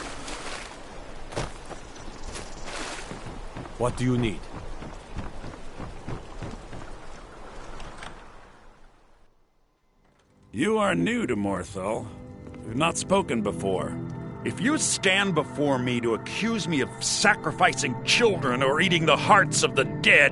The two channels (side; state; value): both; identical; correlation 1.00